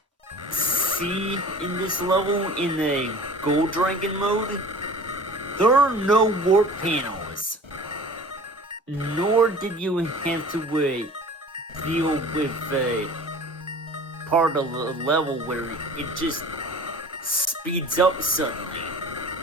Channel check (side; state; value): both; normal; correlation 0.43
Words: see in this level in the Gold Dragon mode, there are no warp panels. Nor did you have to deal with part of the level where it just speeds up suddenly.